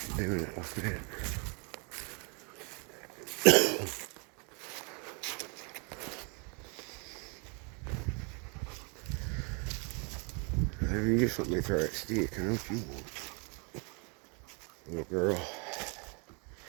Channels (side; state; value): left; quieter; 34.3 dB